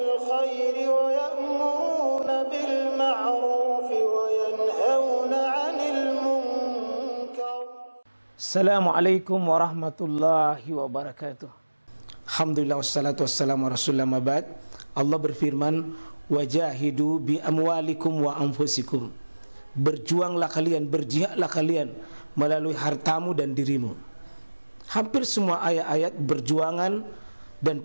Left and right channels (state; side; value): inverted; both; correlation -1.00